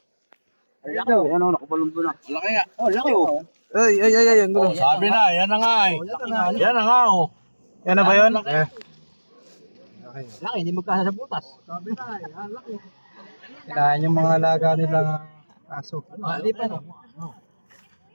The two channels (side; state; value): both; inverted; correlation -1.00